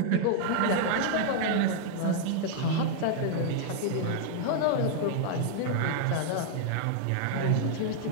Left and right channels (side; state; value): both; different; correlation 0.00